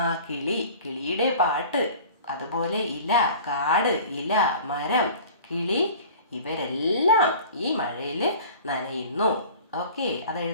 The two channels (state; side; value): inverted; both; correlation -0.43